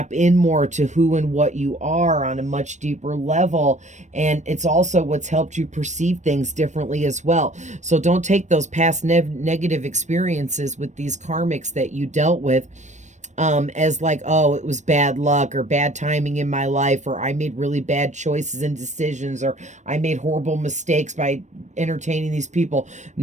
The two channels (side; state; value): left; late; 0.34 ms